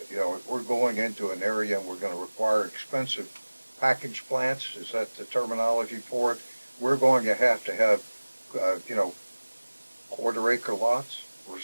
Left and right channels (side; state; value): both; inverted; correlation -1.00